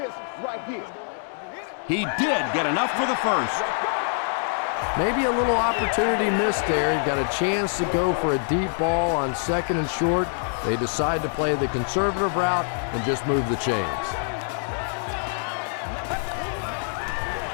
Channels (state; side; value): silent; right; digital silence